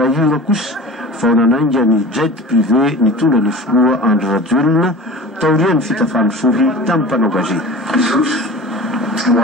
kosa vao nanainga ny jet privé nitondra ny filoha Andry Rajoelina taorian'ny fitafany sohy tamin'ny mpanao gazety. Ho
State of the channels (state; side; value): normal; both; correlation 0.37